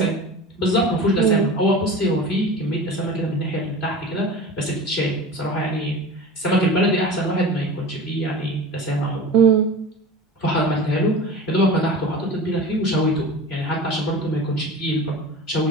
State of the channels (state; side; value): normal; both; correlation 0.35